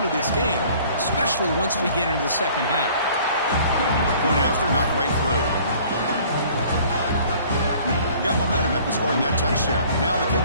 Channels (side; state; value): both; inverted; correlation -0.53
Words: of this game, especially once we get into the second half. Point after, not right through. Got momentum after scoring that touchdown. Now the